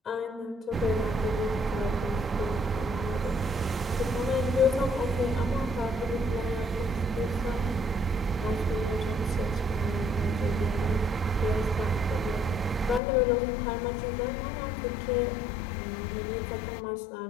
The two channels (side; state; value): right; drops out; at 13.0 s